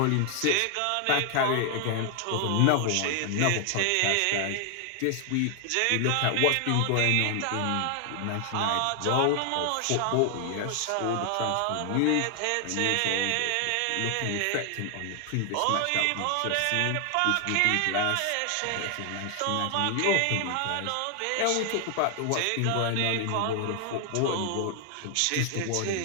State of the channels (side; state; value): both; different; correlation 0.00